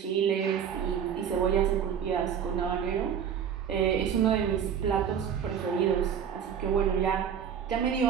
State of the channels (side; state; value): left; quieter; 8.2 dB